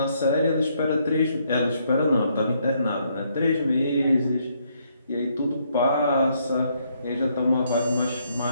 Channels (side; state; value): both; inverted; correlation -0.72